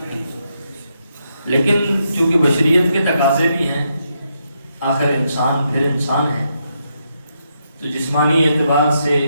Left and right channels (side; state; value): both; inverted; correlation -0.80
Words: لیکن چونکہ بشریت کے تقاضے بھی ہیں، آخر انسان پھر انسان ہے، تو جسمانی اعتبار سے